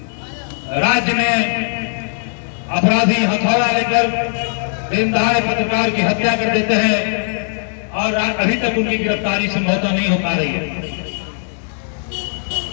राज्य में अपराधी हथौड़ा लेकर दिन दहाड़े पत्रकार की हत्या कर देते हैं और अभी तक उनकी गिरफ्तारी संभवतः नहीं हो पा रही है।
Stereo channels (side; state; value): right; silent; digital silence